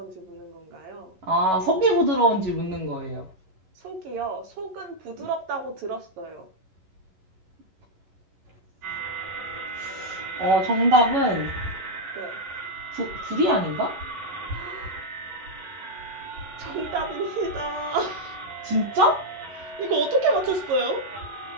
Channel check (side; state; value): left; late; 11 ms